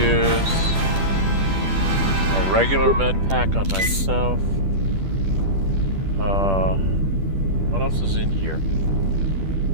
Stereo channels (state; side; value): late; left; 10 ms